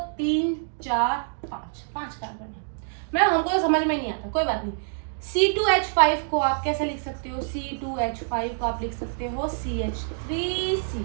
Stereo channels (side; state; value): left; silent; digital silence